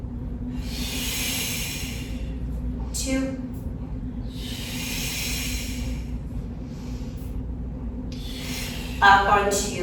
2. Up on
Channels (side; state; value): both; identical; correlation 1.00